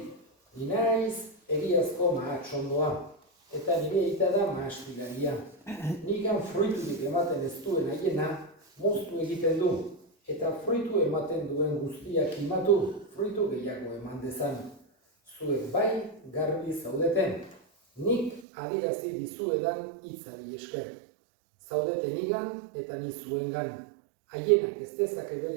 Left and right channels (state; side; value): drops out; left; at 18.4 s